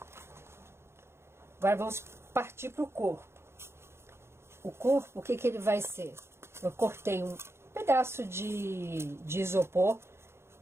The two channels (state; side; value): late; left; 0.12 ms